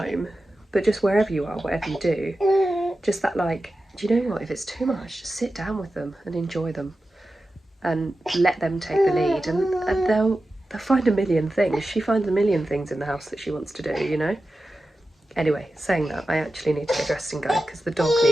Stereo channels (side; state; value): both; normal; correlation 0.93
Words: but just wherever you are, whatever you do, just that, like, do you know what? If it's too much, just sit down with them and enjoy them, and let them take the lead, and they'll find a million things. She finds a million things in the house that she wants to do, you know. Anyway, saying that, I actually need to get dressed and go because the dog